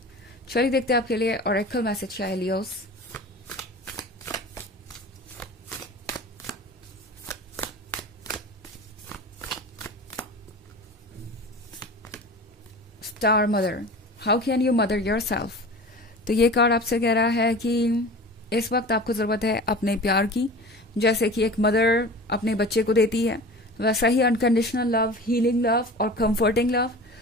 चलिए देखते हैं आपके लिए ऑरेकल मैसेज क्या है Leos. Star mother, how can you mother yourself. तो ये कार्ड आपसे कह रहा है कि इस वक्त आपको ज़रूरत है अपने प्यार की, जैसे कि एक मदर अपने बच्चे को देती है, वैसा ही अनकंडीशनल लव, हीलिंग लव और कंफर्टिंग लव।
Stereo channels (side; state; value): both; normal; correlation 0.37